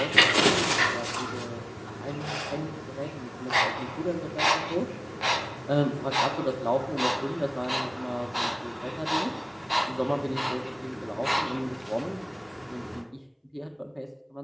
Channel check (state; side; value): identical; both; correlation 1.00